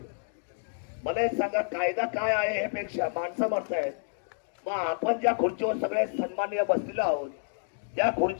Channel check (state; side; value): silent; right; digital silence